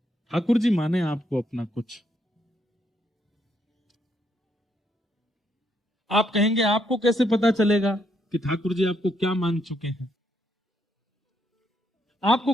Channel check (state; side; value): normal; both; correlation 0.75